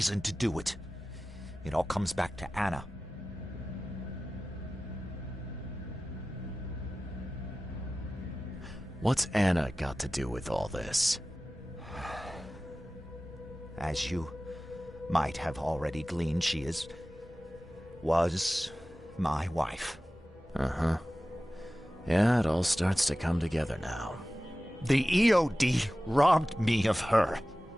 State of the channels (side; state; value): both; normal; correlation 0.96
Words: to do it. It all comes back to Anna. What's Anna got to do with all this? As you might have already gleaned, she was my wife. Uh-huh. Yeah, it all starts to come together now. The EOD robbed me of her.